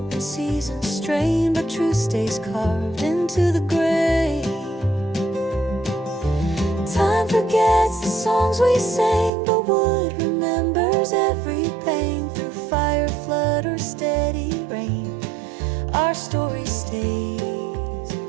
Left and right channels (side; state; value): left; drops out; at 9.3 s